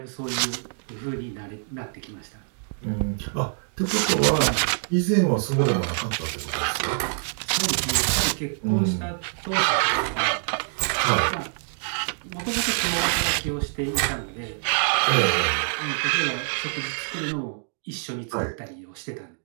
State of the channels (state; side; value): silent; left; digital silence